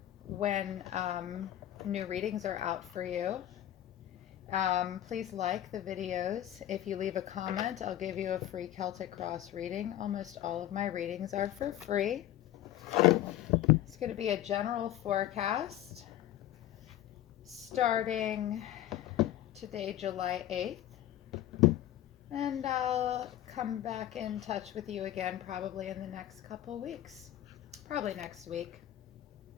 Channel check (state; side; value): quieter; right; 12.6 dB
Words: when new readings are out for you. Please like the videos. If you leave a comment, I'll give you a free Celtic Cross reading. Almost all of my readings are for free. It's going to be a general forecast starting today, July 8th, and I'll come back in touch with you again probably in the next couple weeks, probably next week,